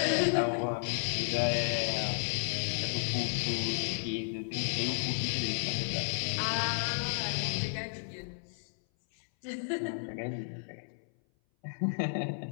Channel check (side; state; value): right; silent; 56 dB below the other